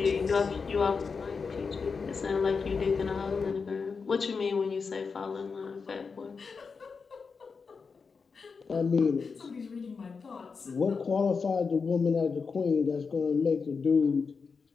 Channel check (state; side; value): quieter; right; 5.1 dB